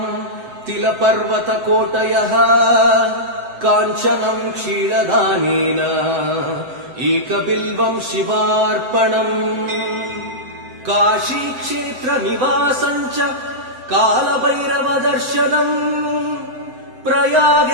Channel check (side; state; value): left; late; 7.8 ms